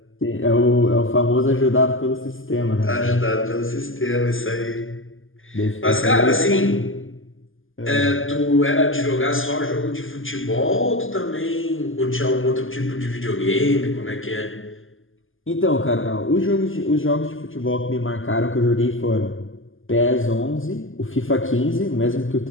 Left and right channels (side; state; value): right; late; 0.59 ms